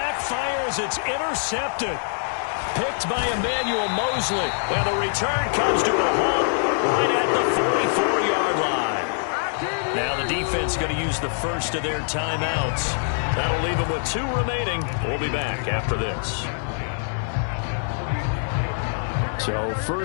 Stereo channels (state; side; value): silent; right; digital silence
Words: as it's intercepted. Picked by Emmanuel Mosley. And the return comes to a halt right at the 44-yard line. Now the defense going to use the first of their timeouts. That'll leave them with 2 remaining. We'll be back after this. So